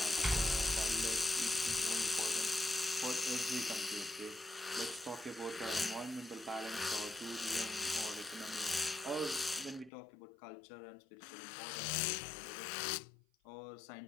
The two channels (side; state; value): right; drops out; at 9.9 s